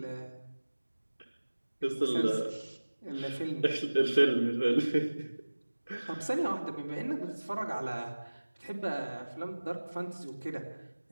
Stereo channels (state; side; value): inverted; both; correlation -1.00